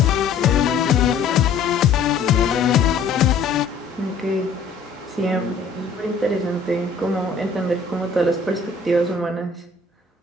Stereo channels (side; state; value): right; quieter; 4.8 dB